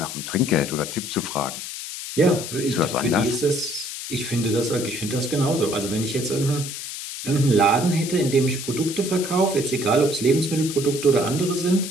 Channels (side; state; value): left; noise; hiss, 8 dB below the sound